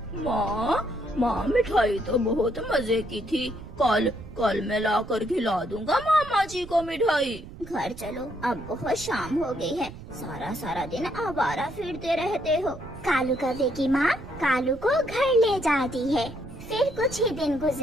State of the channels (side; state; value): right; noise; rumble, 15 dB below the sound